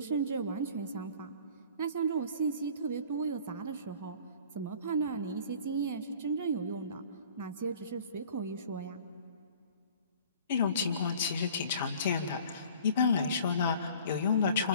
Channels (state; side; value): inverted; both; correlation -0.49